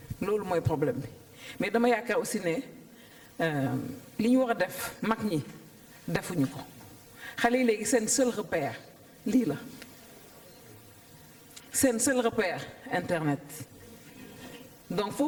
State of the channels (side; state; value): both; identical; correlation 1.00